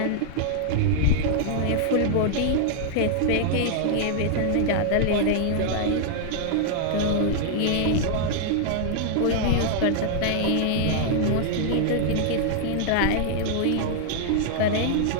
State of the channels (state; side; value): different; both; correlation -0.01